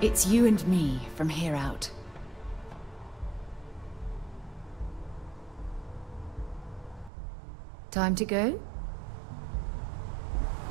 It's you and me from here out. Time to go?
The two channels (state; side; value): drops out; left; at 7.1 s